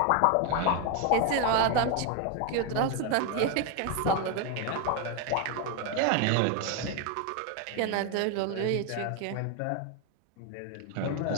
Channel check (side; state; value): both; different; correlation 0.01